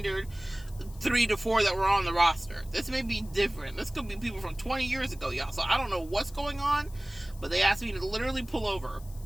3 to 4 that were on the roster. This may be different. This could be people from 20 years ago, y'all. So I don't know what's going on, but they asked me to literally pull over.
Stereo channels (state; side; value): noise; left; hiss, 22 dB below the sound